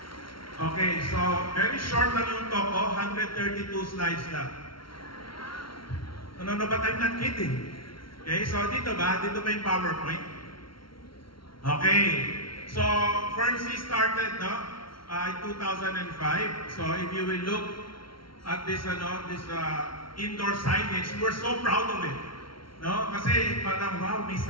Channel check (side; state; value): right; late; 0.74 ms